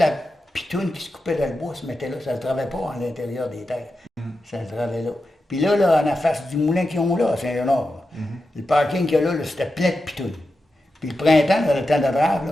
pitoune qui se coupait dans le bois se mettait là, ça ne se travaillait pas à l'intérieur des terres. Ça se travaillait là. Puis là, en la face du moulin qu'ils ont là, à Saint-Léonard, le parking qu'il y a là, c'était plein de pitounes. Puis le printemps, dans le temps de Drave,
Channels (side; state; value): both; normal; correlation 0.90